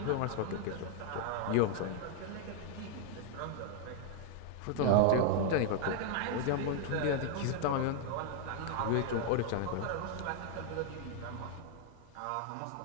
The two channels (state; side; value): different; both; correlation 0.00